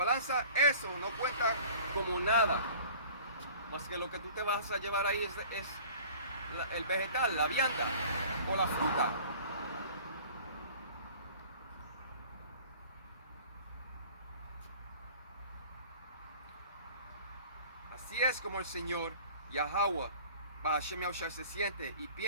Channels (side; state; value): both; inverted; correlation -0.46